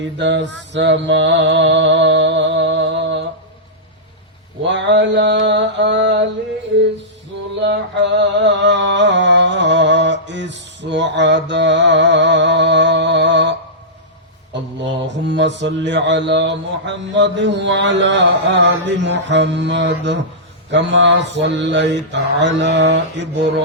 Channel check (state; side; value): normal; both; correlation -0.15